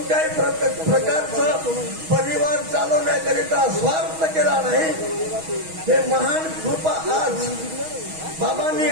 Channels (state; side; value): late; left; 6.3 ms